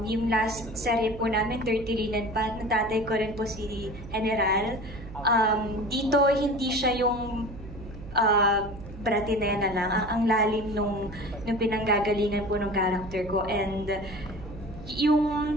Yung last serye po namin, 30 Linen pa, natatay ko rin po si General. Dito, hindi siya yung bratinena lang. Ang lalim nung pinanggagalingan po ng character ko. And yung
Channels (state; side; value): noise; right; hum, 14 dB below the sound